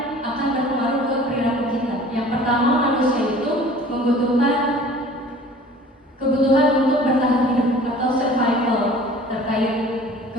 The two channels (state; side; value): normal; both; correlation 0.47